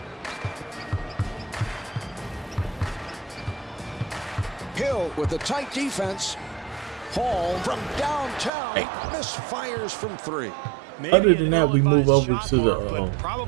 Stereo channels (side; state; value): left; drops out; at 8.5 s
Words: Hill with the tight defense. Paul from downtown misfires from 3. Maybe Other an than that, we move ill-advised over shot, to the, Marv, but